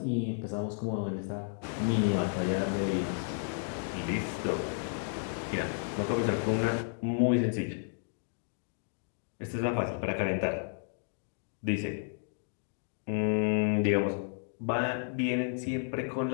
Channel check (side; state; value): right; silent; digital silence